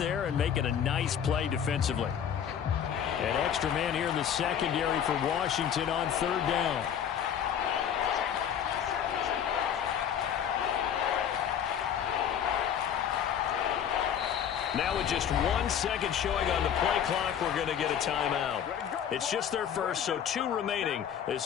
and making a nice play defensively. An extra man here in the secondary for Washington on 3rd down. Now with just 1 second showing on the play clock, we're going to get a timeout. It's just their first, so 2 remaining as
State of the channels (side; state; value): right; quieter; 8.8 dB